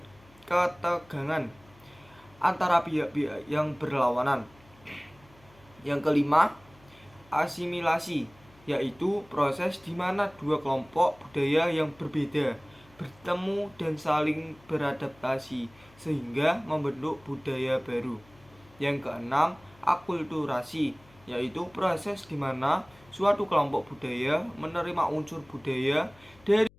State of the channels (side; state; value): left; noise; hum, 27 dB below the sound